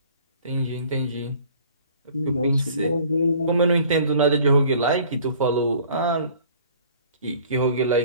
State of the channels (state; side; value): inverted; both; correlation -0.52